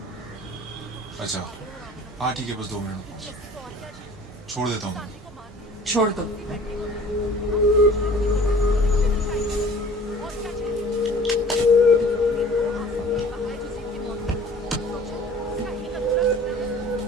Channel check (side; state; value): both; normal; correlation 0.48